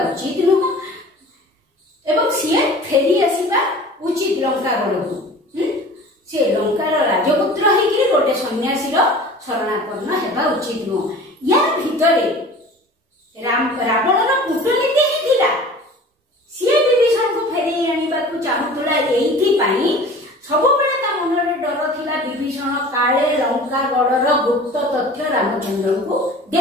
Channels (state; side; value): normal; both; correlation 0.42